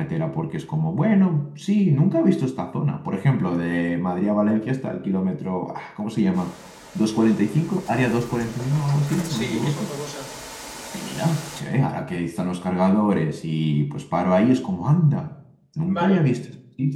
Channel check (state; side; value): identical; both; correlation 1.00